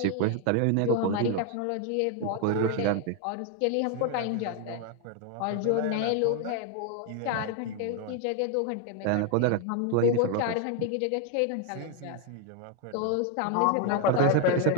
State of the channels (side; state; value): both; different; correlation 0.01